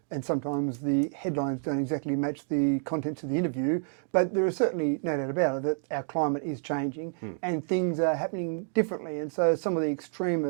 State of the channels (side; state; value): left; silent; 59 dB below the other